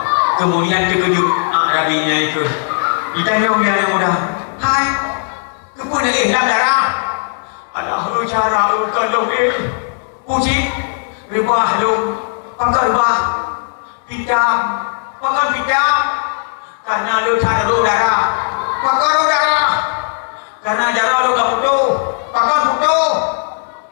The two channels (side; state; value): right; silent; digital silence